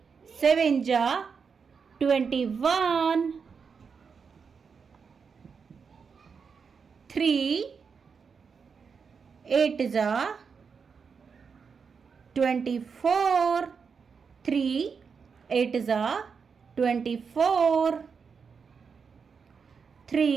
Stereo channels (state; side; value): quieter; left; 5.8 dB